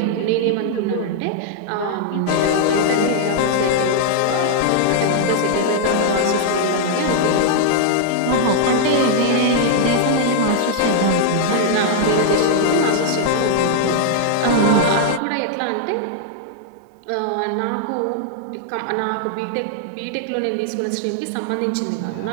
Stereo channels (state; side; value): different; both; correlation -0.01